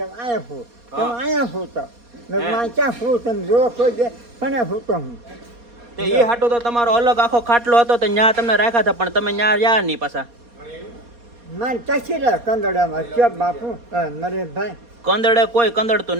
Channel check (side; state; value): left; late; 4.2 ms